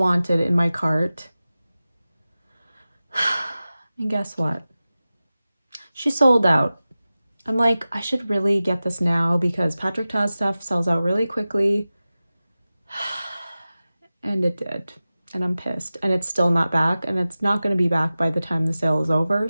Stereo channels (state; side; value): inverted; both; correlation -0.96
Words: in my cart. And guess what? She sold out. I'm like, I should really get this now because Patrick Ta's stuff sells out really quickly. And it did. And I'm pissed. And it's still not back. And it's not going to be back by the time the sale is over.